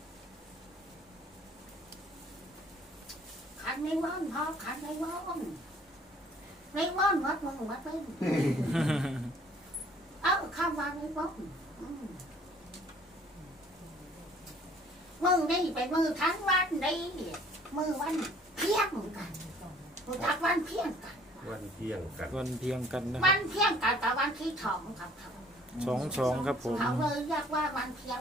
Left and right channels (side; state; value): both; normal; correlation 0.57